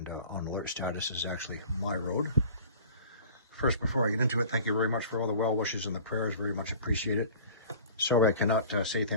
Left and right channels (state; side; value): inverted; both; correlation -0.44